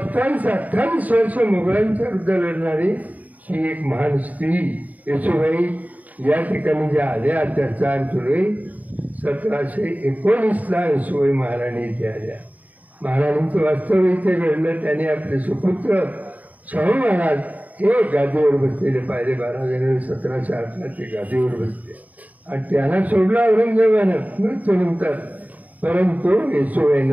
वर्ष मुघलांच्या विरुद्ध लढणारी ही एक महान स्त्री येसूबाई या ठिकाणी ज्या आल्या त्या 4 जुलै 1719ला येसूबाई महाराणी इथे आल्या. महाराणींचं वास्तव इथे घडलं. त्यांनी आपले सुपुत्र शाहू महाराज हे गादीवर बसलेले पाहिले. 12 जानेवारी 1708ला ते गादीवर बसले आणि त्यांना सोडलं औरंगजेबानं मृत्यूनंतर, परंतु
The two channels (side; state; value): left; late; 0.075 ms